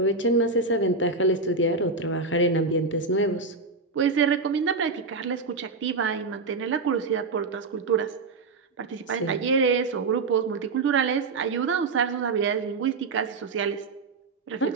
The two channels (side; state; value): left; quieter; 4.0 dB